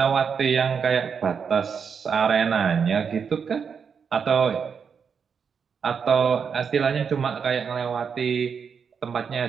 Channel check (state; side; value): quieter; left; 6.4 dB